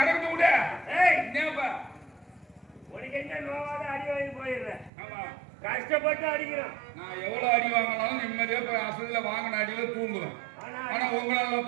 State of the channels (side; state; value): left; drops out; at 4.9 s